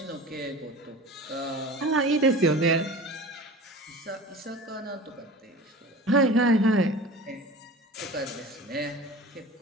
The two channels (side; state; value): both; normal; correlation 0.37